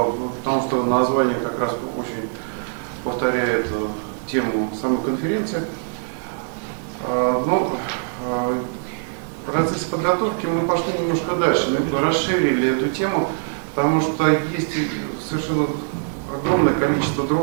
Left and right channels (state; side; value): silent; left; digital silence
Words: что название как раз очень повторяет тему самой конференции. Но в процессе подготовки мы пошли немножко дальше, мы расширили эту тему, потому что есть совершенно огромное количество